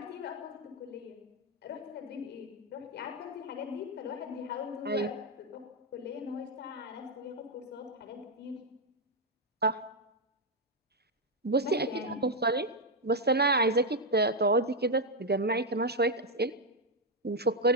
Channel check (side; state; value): both; normal; correlation 0.02